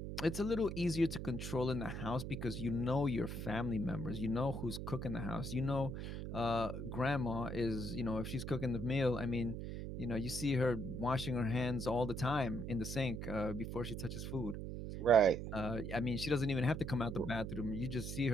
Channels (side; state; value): right; noise; hum, 6 dB below the sound